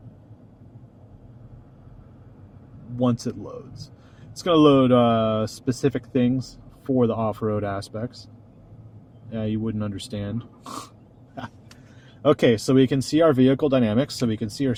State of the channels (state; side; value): identical; both; correlation 1.00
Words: Once it loads, it's going to load specific things for the off-road aspects. Yeah, you wouldn't understand. Okay, so we can see our vehicle dynamics, so we can see our